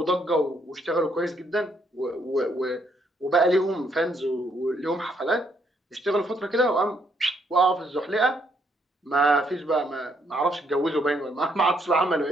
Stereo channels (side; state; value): both; normal; correlation 0.72